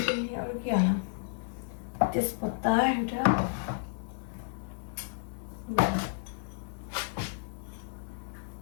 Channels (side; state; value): right; silent; digital silence